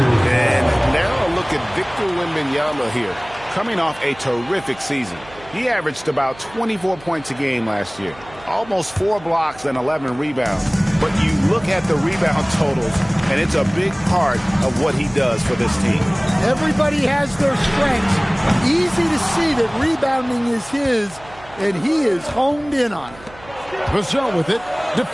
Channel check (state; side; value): noise; right; hum, 21 dB below the sound